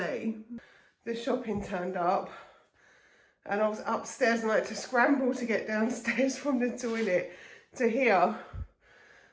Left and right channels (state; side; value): identical; both; correlation 1.00